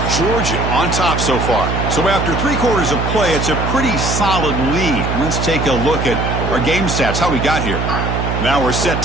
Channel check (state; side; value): noise; right; hum, 2 dB below the sound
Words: Georgia on top so far. So after 3 quarters of play, it's a pretty solid lead. Let's take a look at our game stats, how we got here. Now we're set